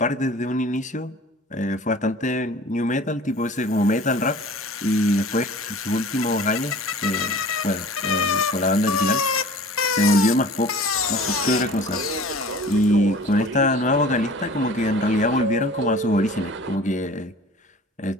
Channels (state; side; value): normal; both; correlation 0.43